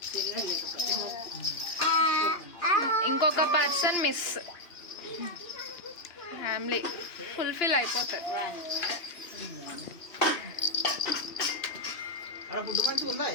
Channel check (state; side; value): late; right; 2.8 ms